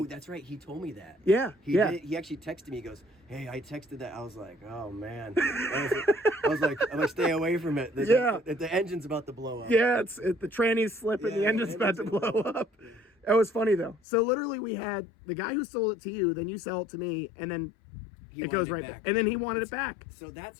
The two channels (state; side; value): drops out; right; at 14.0 s